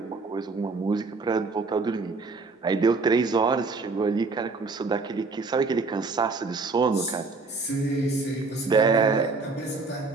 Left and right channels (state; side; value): quieter; left; 3.9 dB